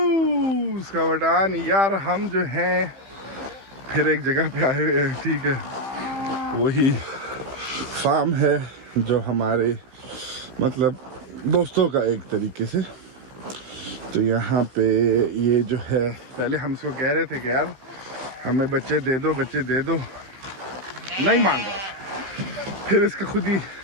का बटान। यार हम जो हैं फिर एक जगह पे आए हुए हैं, ठीक है। वही फार्म है जो हमारे मतलब दोस्तों का एक तरीके से। तो यहाँ पे ये जो है, पहले हम इसको कह रहे थे कि यार हमें बच्चे दे दो, बच्चे दे दो, नहीं मान रहा। फिर इसका खुद ही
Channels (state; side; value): late; left; 15 ms